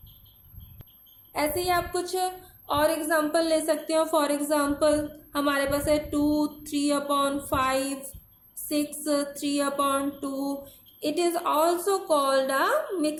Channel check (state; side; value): identical; both; correlation 1.00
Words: ऐसे ही आप कुछ और एग्जाम्पल ले सकते हो। फॉर एग्जाम्पल हमारे पास है 2 3/5, 6 3/2। It is also called a